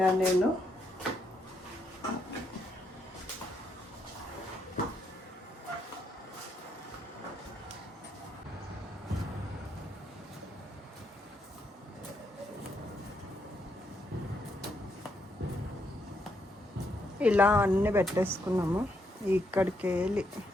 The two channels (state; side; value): normal; both; correlation 0.77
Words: నేను. ఇలా అన్నీ పెట్టేసుకున్నాము. ఇక్కడికి వెళ్ళి